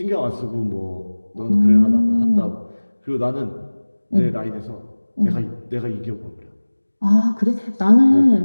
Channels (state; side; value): inverted; both; correlation -1.00